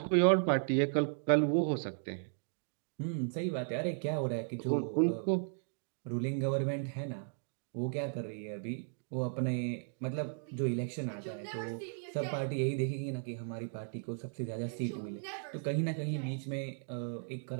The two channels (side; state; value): left; silent; digital silence